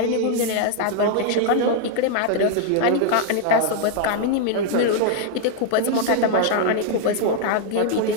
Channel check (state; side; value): different; both; correlation 0.00